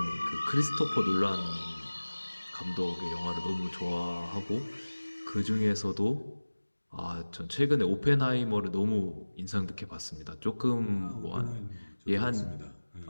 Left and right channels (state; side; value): inverted; both; correlation -1.00